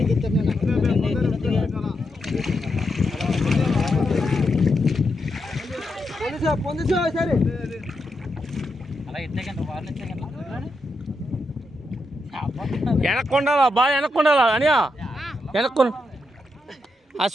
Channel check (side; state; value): both; normal; correlation 0.84